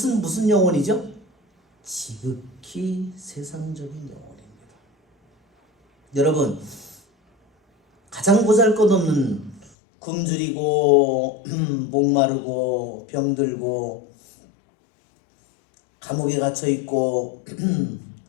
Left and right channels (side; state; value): right; drops out; at 9.7 s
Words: 무슨 영혼이죠? 지극히 세상적인 영혼입니다. 여러분, 가장 보잘것없는 굶주리고 목마르고 병들고 감옥에 갇혀있고